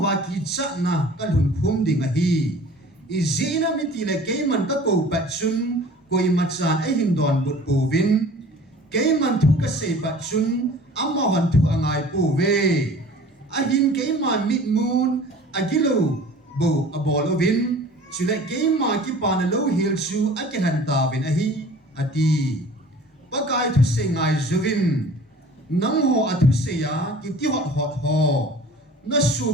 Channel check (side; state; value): both; normal; correlation 0.46